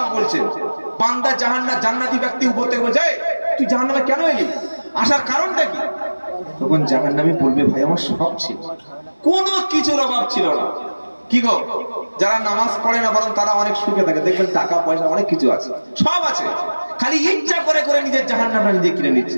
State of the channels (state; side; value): inverted; both; correlation -1.00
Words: বলছেন বান্দা জান্নাতি ব্যক্তি উপর থেকে বলছে তুই জাহান্নামে কেন এলি, আসার কারণটা কি? তখন জাহান্নামী বলবে ভাই আমার সব ছিল, কোনো কিছুর অভাব ছিল না। কি গো, যারা নামাজ পড়ে না বরং তারা অনেক সুখে থাকে, দেখবেন টাকা পয়সা অনেক কিছু আছে, সব আছে, খালি ইচ্ছা করে করে নিজের জাহান্নামটা নিজে কিনে নিচ্ছে।